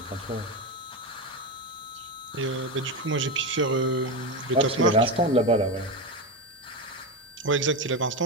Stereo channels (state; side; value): normal; both; correlation 0.15